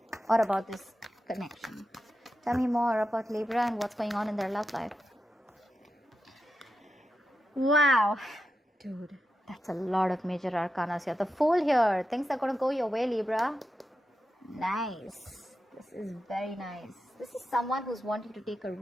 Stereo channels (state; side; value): normal; both; correlation 0.89